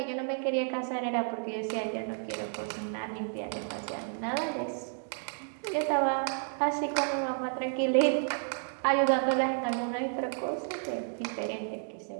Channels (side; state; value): left; silent; 57 dB below the other